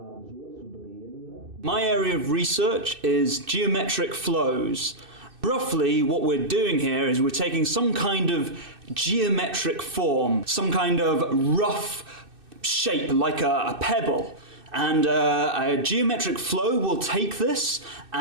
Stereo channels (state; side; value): late; left; 2.6 ms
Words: My area of research is geometric flows. Roughly, what we're doing here is we're taking some kind of geometric form, some kind of rough shape like a pebble. And a geometric flow will take this